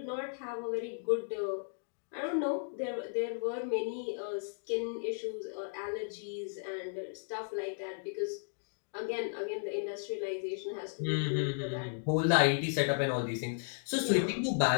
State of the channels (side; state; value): right; silent; digital silence